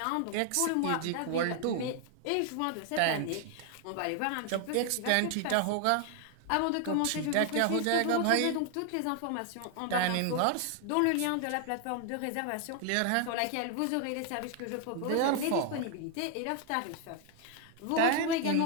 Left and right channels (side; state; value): both; different; correlation 0.00